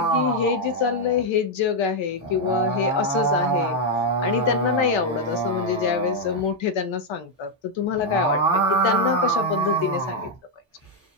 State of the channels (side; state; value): both; normal; correlation 0.00